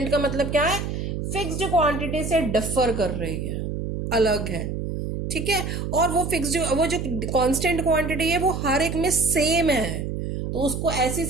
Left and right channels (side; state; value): right; noise; hum, 4 dB below the sound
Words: का मतलब क्या है? फिक्स्ड क्वांटिटी से डिफर कर रही है, अलग है. ठीक है, और वो फिक्स्ड, वो जो कांस्टेंट क्वांटिटी है वो हर एक में सेम है, तो उसको ऐसी